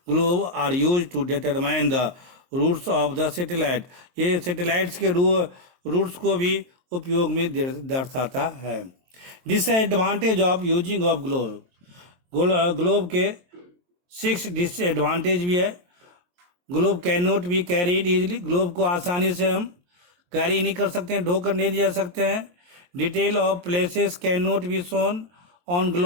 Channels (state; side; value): late; left; 23 ms